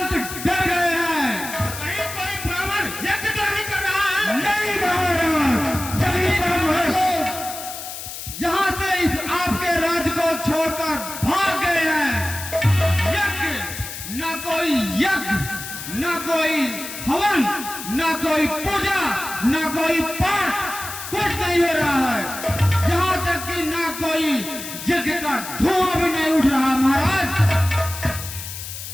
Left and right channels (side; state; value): left; noise; hiss, 9 dB below the sound